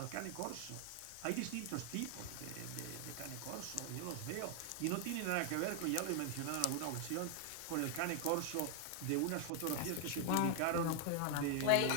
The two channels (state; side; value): different; both; correlation 0.00